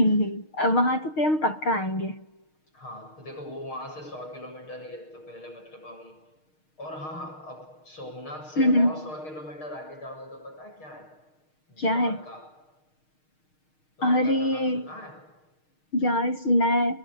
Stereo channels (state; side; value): late; right; 6.5 ms